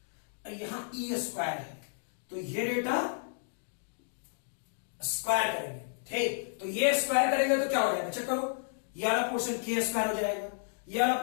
यहां ई स्क्वायर है तो ये डेटा स्क्वायर करेंगे, ठीक, तो ये स्क्वायर करेंगे तो क्या हो जाएगा, चेक करो, ये वाला पोर्शन के स्क्वायर हो जाएगा, ये वाला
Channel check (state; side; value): silent; right; digital silence